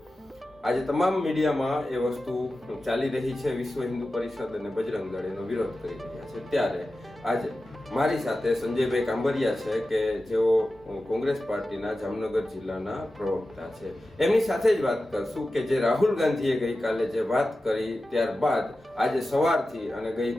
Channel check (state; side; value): normal; both; correlation 0.94